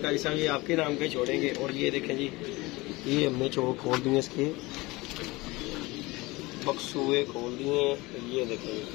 साहब ये आपके नाम का ही छोड़ेंगे। और ये देखें जी ये हमने चौक खोल दिए, इसके बक्सूए खोल दिए। ये देखें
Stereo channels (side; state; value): right; quieter; 22.1 dB